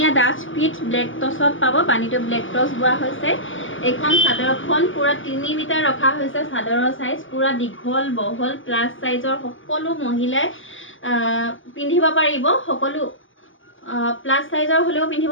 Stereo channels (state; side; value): late; right; 0.57 ms